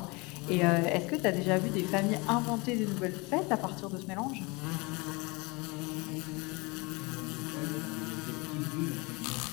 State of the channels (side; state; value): right; quieter; 26.7 dB